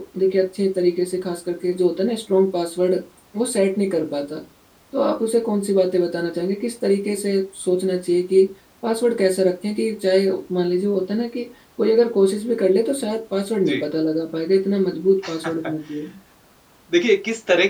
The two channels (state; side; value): identical; both; correlation 1.00